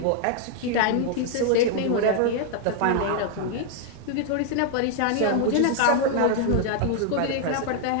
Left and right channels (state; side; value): different; both; correlation 0.00